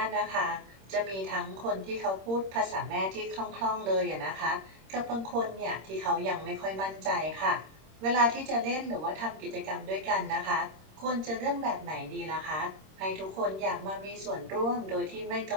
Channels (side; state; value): left; late; 26 ms